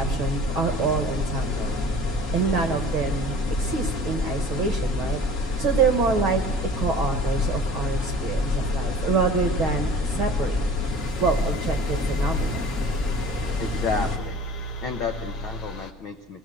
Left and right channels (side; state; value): both; normal; correlation 0.44